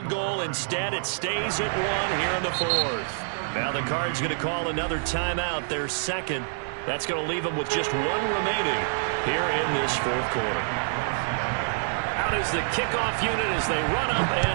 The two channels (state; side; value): silent; left; digital silence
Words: goal. Instead, it stays at 1 here in the 4th. Now the Cards going to call another timeout, their second. That's going to leave them with just 1 remaining here in this 4th quarter. Out is the kickoff unit as they run up